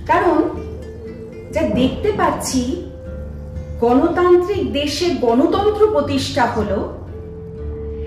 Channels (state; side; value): identical; both; correlation 1.00